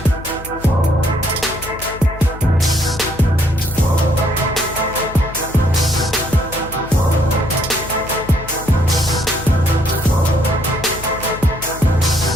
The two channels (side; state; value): left; noise; hum, 14 dB below the sound